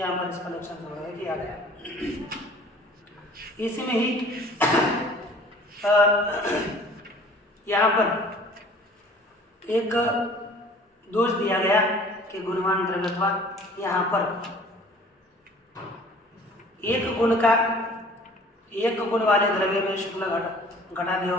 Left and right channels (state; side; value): normal; both; correlation 0.50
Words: पर इसका लक्षण संग्रह किया गया। इसी में ही यहाँ पर एक दोष दिया गया कि गुणवान द्रव्यत्वा। यहाँ पर एक गुण वाले द्रव्य में शुक्ल घटादियों